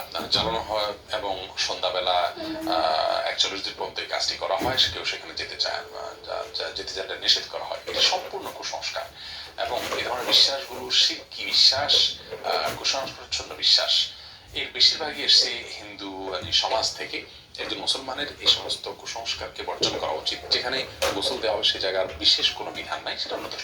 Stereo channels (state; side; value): identical; both; correlation 1.00